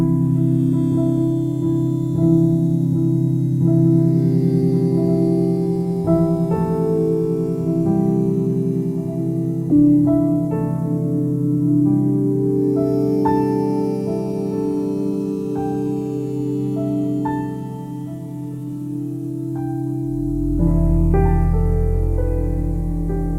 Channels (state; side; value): identical; both; correlation 1.00